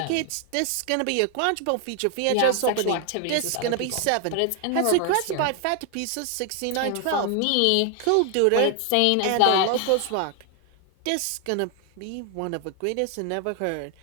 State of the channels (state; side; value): different; both; correlation 0.00